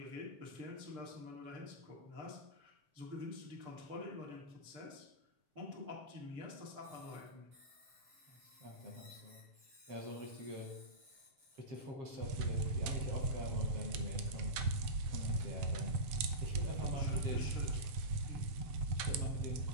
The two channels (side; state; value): left; late; 7.7 ms